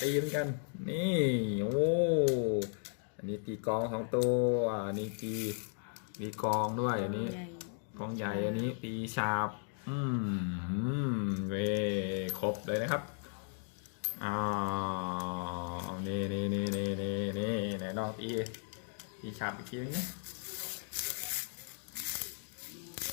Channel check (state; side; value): silent; right; 54 dB below the other